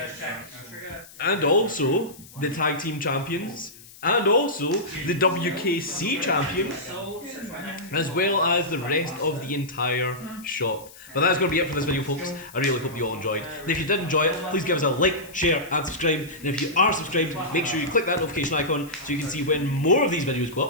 And also the tag team champions, and also the WKC champion, as well as the rest of the entire shop. But that's going to be it for this video, folks. I really hope you all enjoyed. And if you did enjoy it, please give us a like, share and subscribe. And if you are subscribed, make sure you click that notification icon so you can see when more of these videos go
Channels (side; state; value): left; noise; hiss, 20 dB below the sound